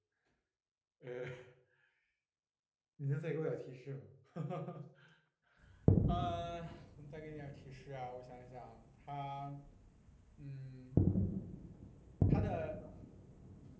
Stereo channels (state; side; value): identical; both; correlation 1.00